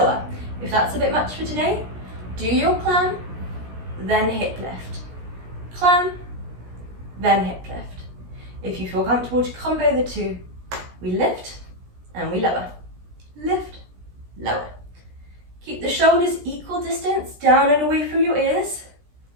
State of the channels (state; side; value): late; left; 17 ms